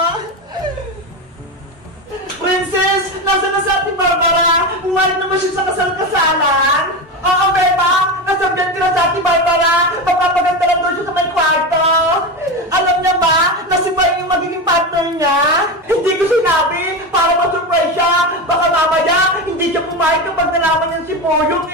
Princess! Nasaan na sa Ate Barbara? Umalit naman siya sa kasal-kasalan! Oo, Beba! Nasabihan ko na sa Ate Barbara! Magpapaganda lang doon siya sa may kwarto! Alam niya ba na si Boy yung magiging partner niya? Hindi ko sinabi para ma-surprise siya! Baka mamaya hindi siya pumayag kapag nalaman niya si Boyong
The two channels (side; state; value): both; normal; correlation 0.19